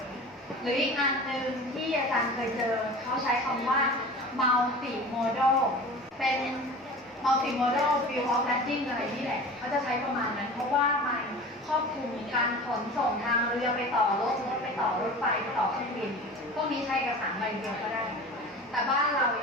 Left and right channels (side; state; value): both; normal; correlation 0.36